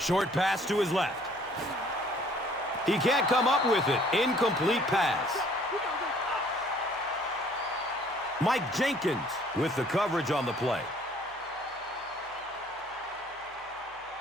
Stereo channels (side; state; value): left; noise; hum, 28 dB below the sound